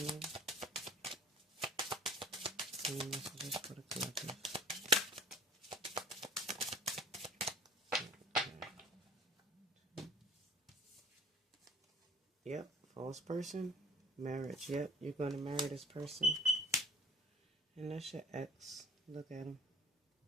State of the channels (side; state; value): both; normal; correlation 0.46